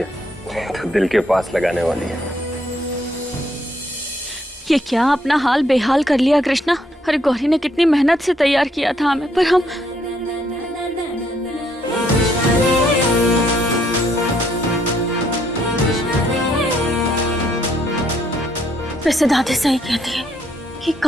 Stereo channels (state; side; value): normal; both; correlation 0.71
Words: तो दिल के पास लगाने वाली है। ये क्या अपना हाल बेहाल कर लिया कृष्णा। अरे गौरी ने कितनी मेहनत से तैयार किया था हमें, पर हम वैसे दादी सही कहती है कि